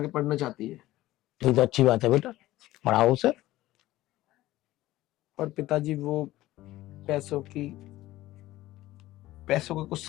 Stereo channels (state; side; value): quieter; right; 16.4 dB